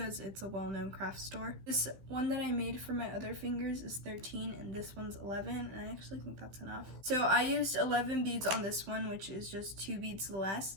it's a well-known craft store. This one that I made for my other fingers is 13 and this one's 11, and I actually think that's enough. So I used 11 beads on this one, which is just 2 beads less.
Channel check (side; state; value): left; late; 15 ms